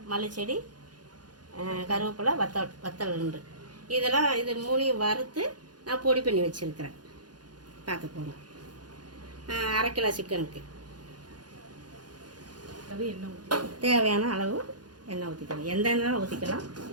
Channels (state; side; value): late; left; 0.69 ms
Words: மல்லிச்செடி, கருவேப்பிலை, வத்தல் 2. இதெல்லாம் இது 3 வறுத்து நான் பொடி பண்ணி வச்சுருக்கிறேன். பார்த்துக்கோங்க. 1/2 கிலோ சிக்கனுக்கு தேவையான அளவு எண்ணெய் ஊற்றிக்கலாம். எந்த எண்ணெய் ஊற்றிக்கலாம்.